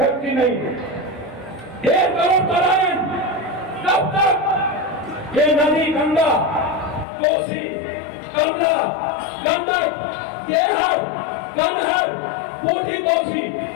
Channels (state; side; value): drops out; right; at 7.1 s